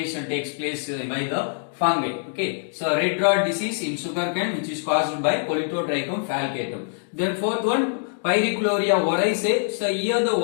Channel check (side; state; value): right; silent; digital silence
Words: takes place by the fungi. Okay, so red rot disease in sugarcane which is caused by Politotrichum falcatum. Then fourth one, Pyricloria oryzae. So here the